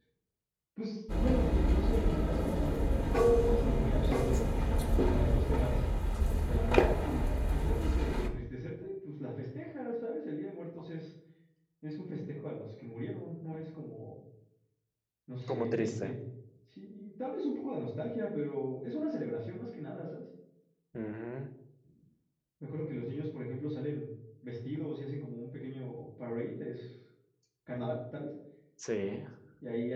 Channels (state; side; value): identical; both; correlation 1.00